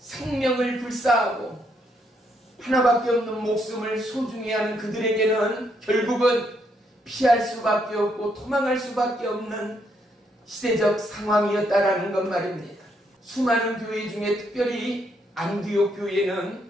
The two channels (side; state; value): both; normal; correlation 0.74